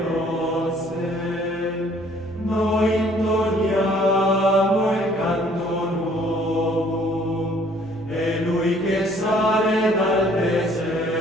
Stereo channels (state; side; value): noise; right; hum, 19 dB below the sound